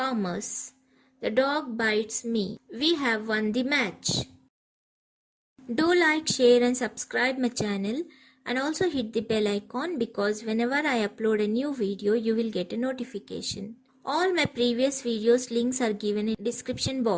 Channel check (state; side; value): identical; both; correlation 1.00